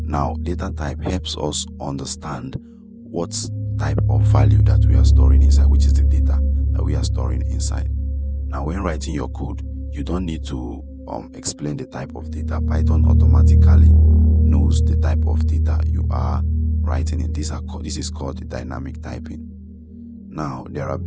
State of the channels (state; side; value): identical; both; correlation 1.00